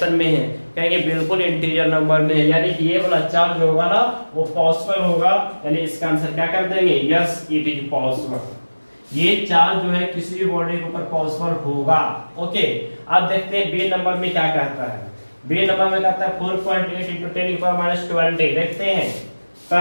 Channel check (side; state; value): both; inverted; correlation -1.00